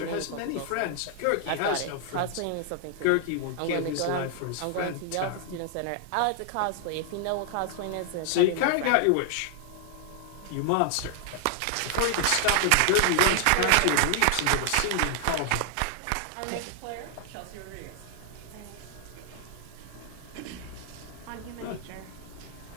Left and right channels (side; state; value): both; different; correlation 0.00